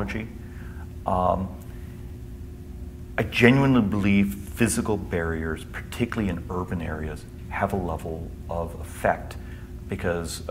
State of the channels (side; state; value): both; identical; correlation 1.00